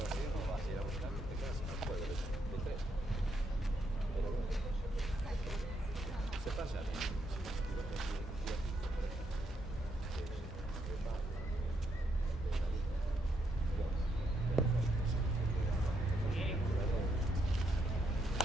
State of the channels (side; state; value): both; normal; correlation 0.78